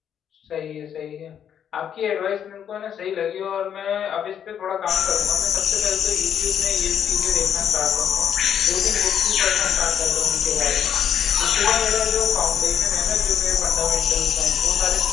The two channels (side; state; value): right; quieter; 8.8 dB